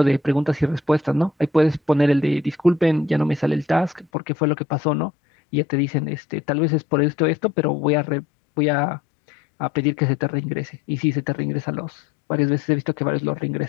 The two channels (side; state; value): right; drops out; at 4.0 s